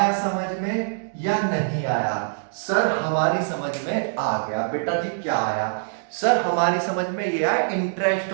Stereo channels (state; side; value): silent; left; digital silence